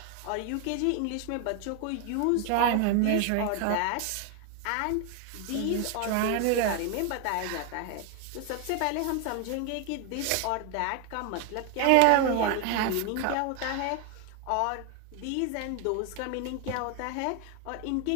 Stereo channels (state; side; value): different; both; correlation 0.01